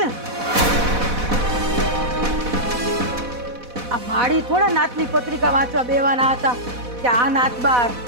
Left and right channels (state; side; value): late; left; 4.1 ms